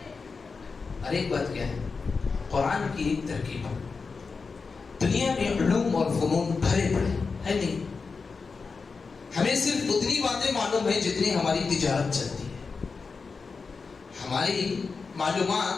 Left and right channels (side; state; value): right; quieter; 4.7 dB